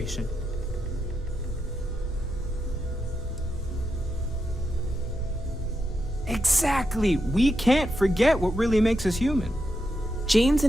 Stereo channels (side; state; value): both; normal; correlation 0.85